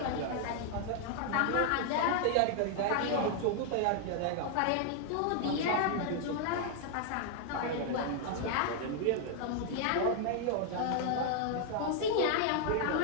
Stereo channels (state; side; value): different; both; correlation 0.00